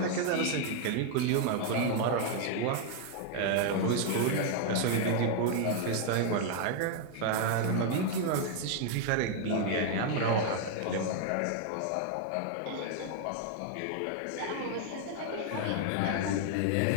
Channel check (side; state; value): both; different; correlation 0.00